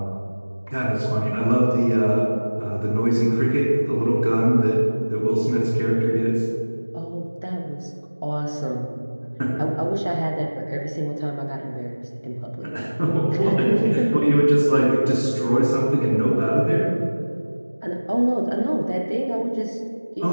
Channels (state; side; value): inverted; both; correlation -1.00